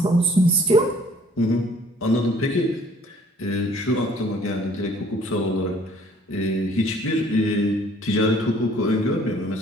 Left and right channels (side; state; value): both; normal; correlation 0.56